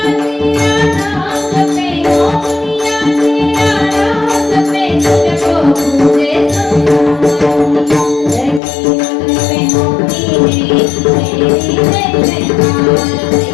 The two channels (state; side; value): drops out; right; at 8.6 s